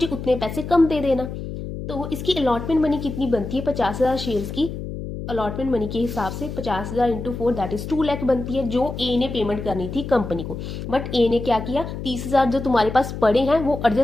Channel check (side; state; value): left; noise; hum, 7 dB below the sound